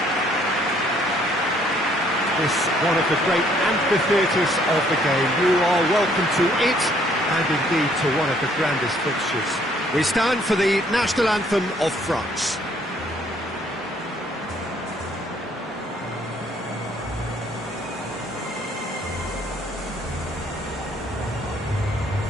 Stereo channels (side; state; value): both; normal; correlation 0.64